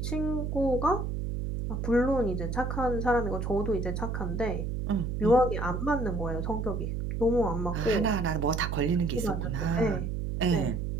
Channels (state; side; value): noise; right; hum, 2 dB below the sound